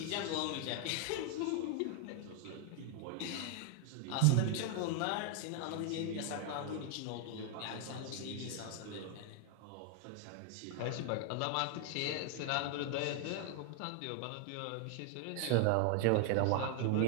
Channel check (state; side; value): different; both; correlation 0.01